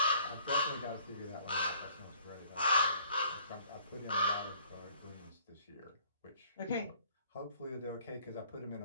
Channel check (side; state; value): both; inverted; correlation -0.58